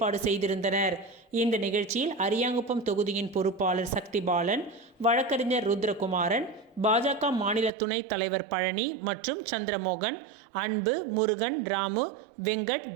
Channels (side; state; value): left; drops out; at 7.7 s